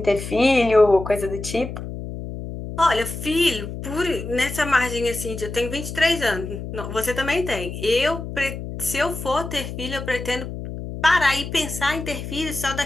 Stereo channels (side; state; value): left; noise; hum, 8 dB below the sound